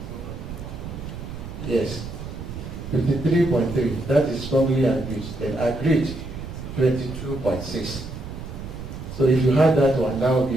Yes. 53.3, that is strongly agreed. Then agreed, 22.6. So if you had that one, that would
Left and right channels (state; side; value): noise; right; rumble, 10 dB below the sound